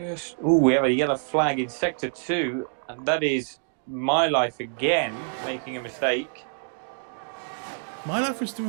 we have a yellow flag in sector 2, and that is My Life again making a mistake. My Life was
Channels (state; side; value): silent; left; digital silence